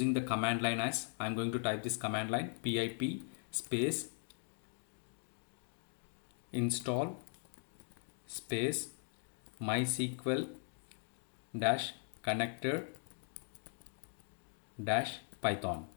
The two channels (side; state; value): right; silent; 51 dB below the other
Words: the command line, as I am going to type this command line, pip space install space MySQL dash connector dash Python.